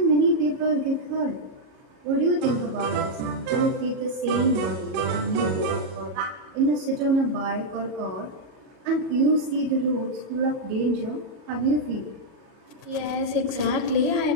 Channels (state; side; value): late; left; 37 ms